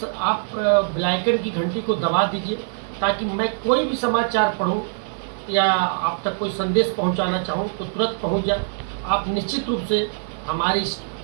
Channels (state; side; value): silent; left; 64 dB below the other